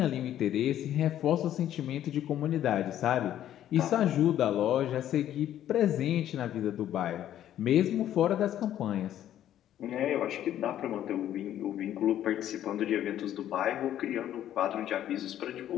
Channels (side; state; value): right; quieter; 11.6 dB